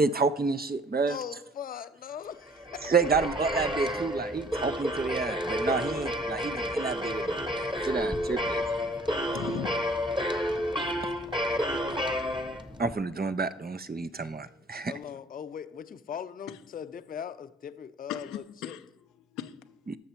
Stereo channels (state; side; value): normal; both; correlation 0.55